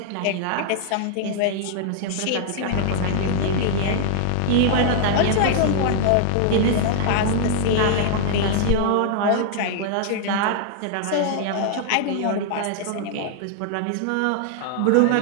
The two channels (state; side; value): different; both; correlation 0.00